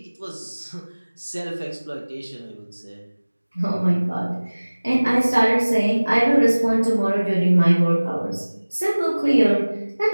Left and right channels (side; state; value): both; inverted; correlation -1.00